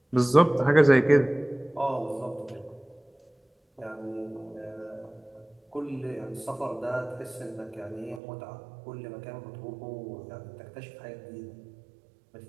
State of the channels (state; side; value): drops out; left; at 8.2 s